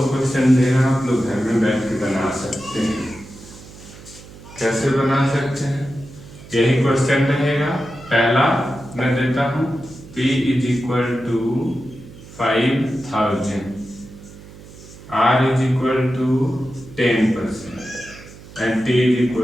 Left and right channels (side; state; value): right; noise; hum, 19 dB below the sound